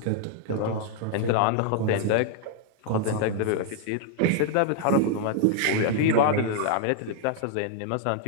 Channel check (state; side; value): different; both; correlation 0.00